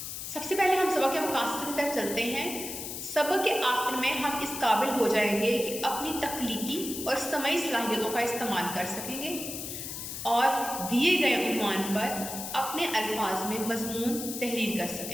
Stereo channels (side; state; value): left; noise; hiss, 7 dB below the sound